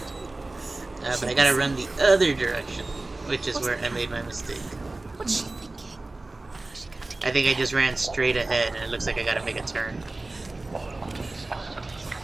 But I gotta run the other direction, which is where I made my mistake. What's she thinking? How's she going to get I think I just ran straight ahead, and it looks like I gotta make a turn.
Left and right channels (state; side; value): quieter; left; 3.1 dB